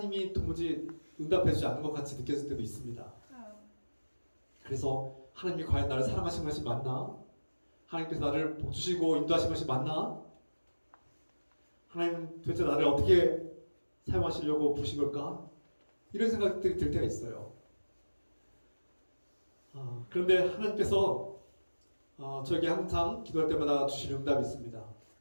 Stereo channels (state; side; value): inverted; both; correlation -1.00